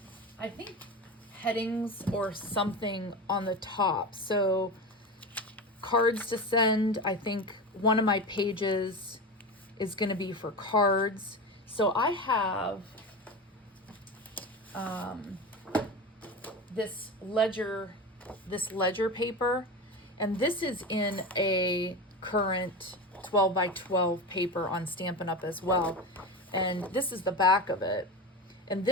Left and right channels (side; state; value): both; normal; correlation 0.24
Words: I think, headings or something on the top. So cards to send, I think one of my pages is going to be for cards. So I have this ledger paper, and this is in a current 12 by 12 paper on Stampin' Up! As well. And this is the back of it. And